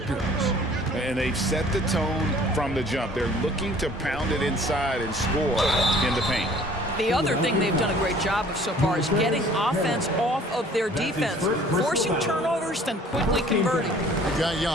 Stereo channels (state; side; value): normal; both; correlation 0.53